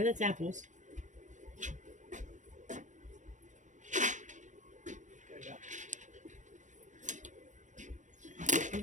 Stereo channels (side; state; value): left; late; 0.36 ms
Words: that's apples. We've